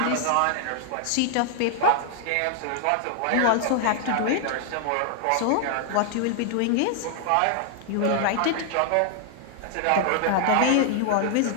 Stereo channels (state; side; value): different; both; correlation -0.01